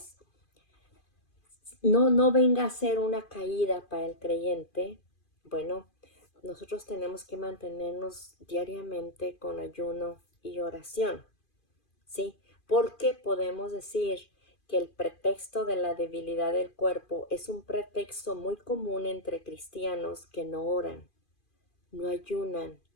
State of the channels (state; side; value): late; right; 2.5 ms